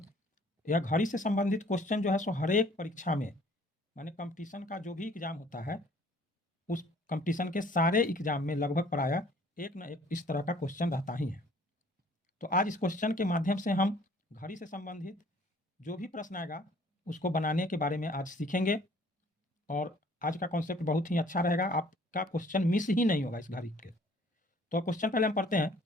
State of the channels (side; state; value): both; normal; correlation 0.56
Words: यह घड़ी से संबंधित क्वेश्चन जो है सो हर एक परीक्षा में, माने कंपटीशन का जो भी एग्जाम होता है उस कंपटीशन के सारे एग्जाम में लगभग प्रायः एक न एक इस तरह का क्वेश्चन रहता ही है। तो आज इस क्वेश्चन के माध्यम से हम घड़ी से संबंधित जो भी प्रश्न आएगा उसको बनाने के बारे में आज सीखेंगे और आज का कॉन्सेप्ट बहुत ही अच्छा रहेगा, आपका क्वेश्चन मिस ही नहीं होगा इस घड़ी के। तो क्वेश्चन पहले हम पढ़ते हैं।